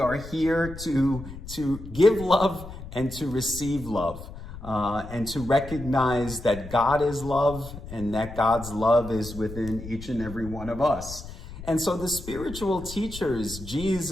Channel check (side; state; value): left; noise; rumble, 12 dB below the sound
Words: here to give love and to receive love, and to recognize that God is love and that God's love is within each and every one of us. And so the spiritual teachers,